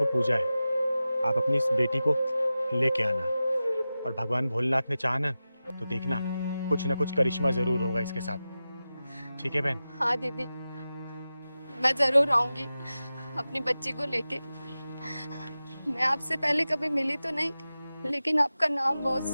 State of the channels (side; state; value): both; inverted; correlation -0.94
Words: पूजा है, आप अपनी इस बेटी को लेके आना। और भगवान भोलेनाथ ने चाहा ना तो देखना कुछ ना कुछ करिश्मा जरूर होगा इसके साथ। ठीक है बहन? हाँ दीदी, मैं जरूर आऊंगी अपनी बच्ची को लेके। मैं आपसे पहले कभी मिली तो नहीं, लेकिन आपका नाम बहुत